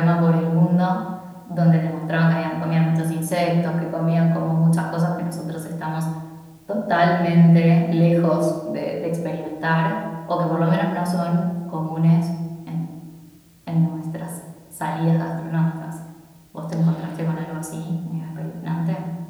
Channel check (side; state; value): both; identical; correlation 1.00